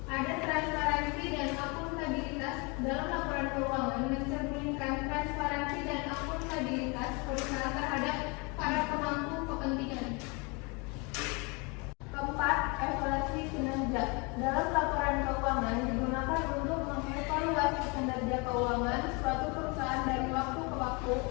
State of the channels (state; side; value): quieter; right; 29.9 dB